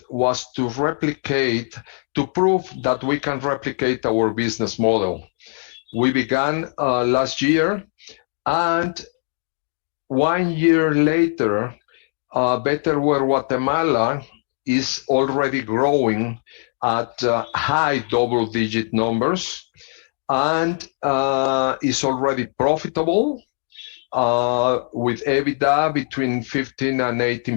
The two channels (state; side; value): silent; right; 65 dB below the other